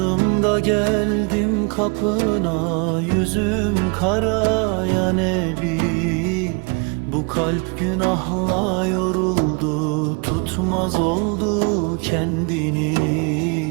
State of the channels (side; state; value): left; quieter; 32.6 dB